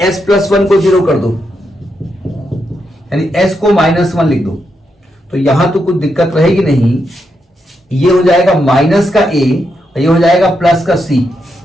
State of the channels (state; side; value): normal; both; correlation 0.83